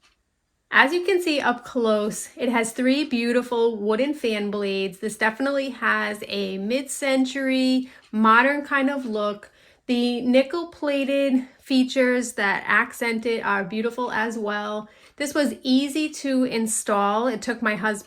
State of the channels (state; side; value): identical; both; correlation 1.00